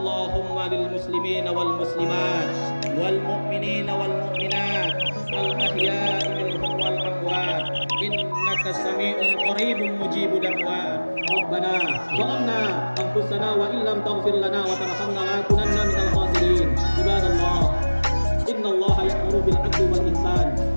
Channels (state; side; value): inverted; both; correlation -1.00